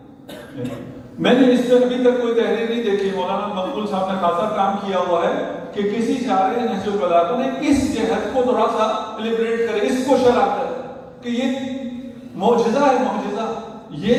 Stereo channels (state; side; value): identical; both; correlation 1.00